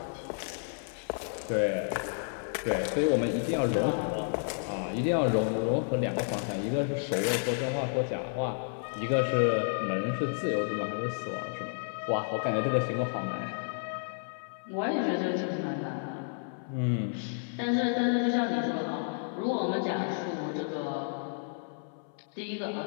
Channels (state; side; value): silent; right; 57 dB below the other